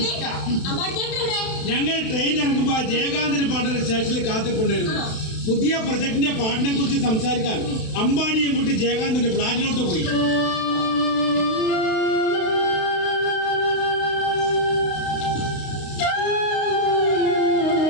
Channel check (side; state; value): right; late; 32 ms